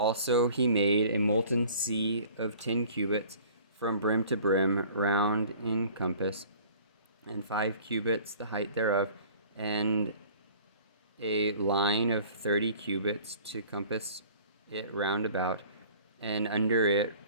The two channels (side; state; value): both; inverted; correlation -0.49